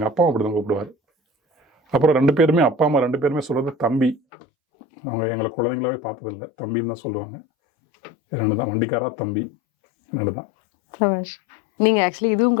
அப்பாவும் அப்படி தான் கூப்பிடுவார். அப்புறம் 2 பேருமே அப்பா அம்மா 2 பேருமே சொல்கிறது தம்பி. அவங்க எங்களை குழந்தைங்களாவே பார்த்ததில்லை, தம்பின்னு தான் சொல்லுவாங்க. 2 தான், வண்டிக்காரா தம்பி 2 தான். நீங்கள் ஆக்சுவலி இதுவும்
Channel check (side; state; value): right; drops out; at 4.2 s